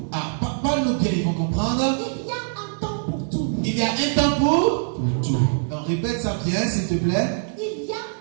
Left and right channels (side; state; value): left; silent; 59 dB below the other